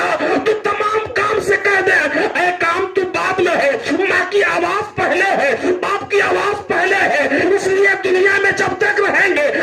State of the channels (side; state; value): both; identical; correlation 1.00